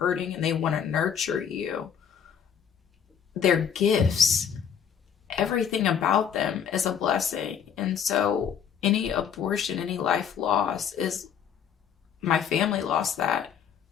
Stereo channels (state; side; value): quieter; right; 7.9 dB